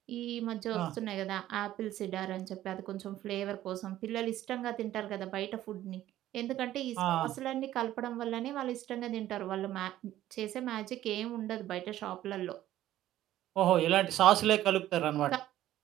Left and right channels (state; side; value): quieter; left; 13.5 dB